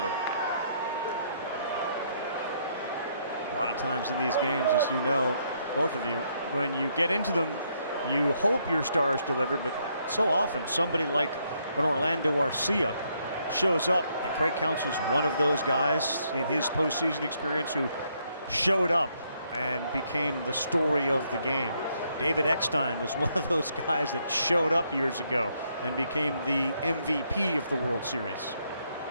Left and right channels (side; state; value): both; inverted; correlation -0.73